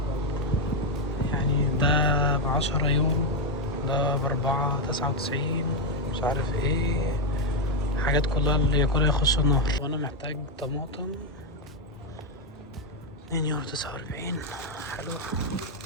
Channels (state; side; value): normal; both; correlation 0.04